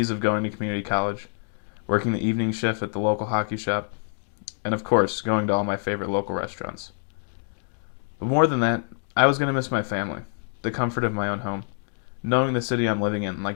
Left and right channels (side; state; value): right; silent; 60 dB below the other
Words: of going to community college, working the evening shift at the local hockey shop, and of course, going to all my favorite local restaurants. But more than that, I was going to miss my family, the comfort of my own home, knowing the city I'm living in